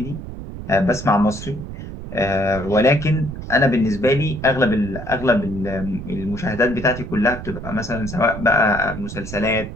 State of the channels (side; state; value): right; noise; rumble, 9 dB below the sound